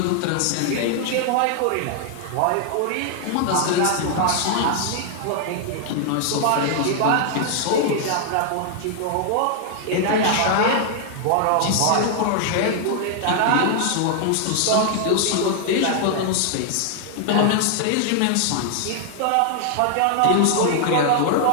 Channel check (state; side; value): different; both; correlation 0.00